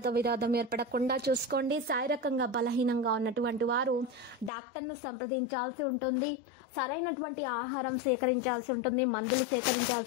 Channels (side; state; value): right; drops out; at 4.5 s